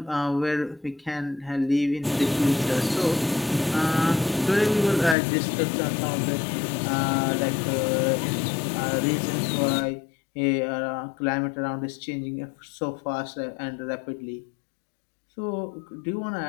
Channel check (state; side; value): drops out; right; at 5.2 s